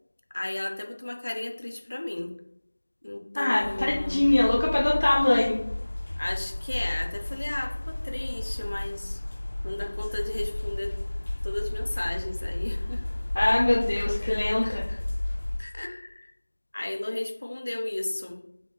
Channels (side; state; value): both; inverted; correlation -1.00